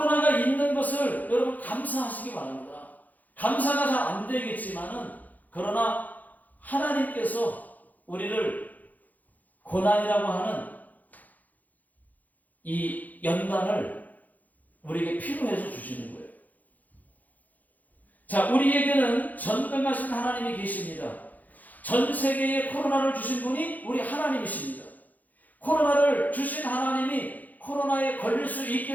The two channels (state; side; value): late; right; 0.081 ms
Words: 있는 것을 여러분 감사하시기 바랍니다. 감사가 잘 안 되겠지만은, 그러나 하나님께서 우리를 고난이라고 하는 이 연단을 우리에게 필요해서 주시는 거예요. 자, 우리에게는 전능하신 하나님이 계십니다. 전 세계에 코로나를 주신 분이 우리 하나님이십니다. 코로나를 주신 하나님이 코로나에 걸릴 수